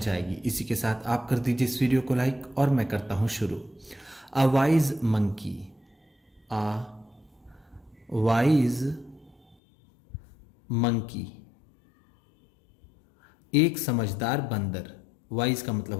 आएगी। इसी के साथ आप कर दीजिए इस वीडियो को लाइक और मैं करता हूँ शुरू। A wise monkey. A wise monkey, एक समझदार बंदर। वाइज का मतलब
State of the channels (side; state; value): right; drops out; at 9.6 s